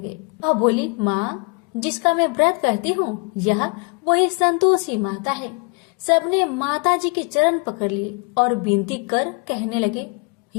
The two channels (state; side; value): quieter; right; 32.8 dB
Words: वह बोली, माँ, जिसका मैं व्रत करती हूँ, यह वही संतोषी माता है। सबने माता जी के चरण पकड़ लिए और विनती कर कहने लगे,